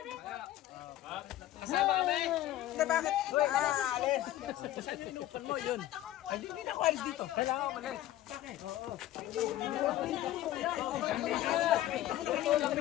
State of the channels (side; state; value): right; quieter; 14.1 dB